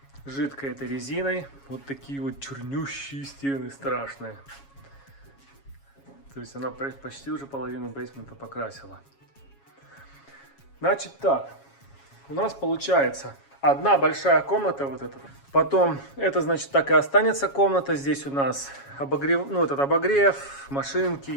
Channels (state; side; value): late; right; 7.2 ms